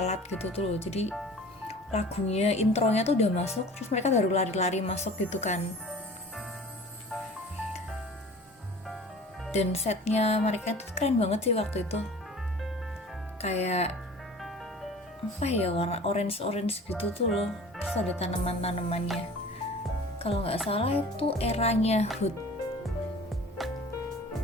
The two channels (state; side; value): normal; both; correlation 0.43